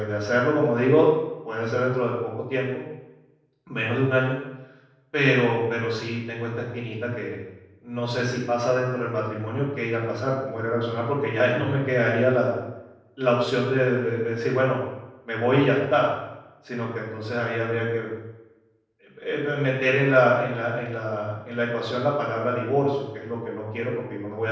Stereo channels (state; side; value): identical; both; correlation 1.00